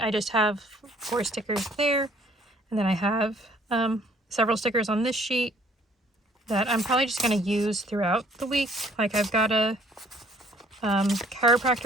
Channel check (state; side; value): normal; both; correlation 0.59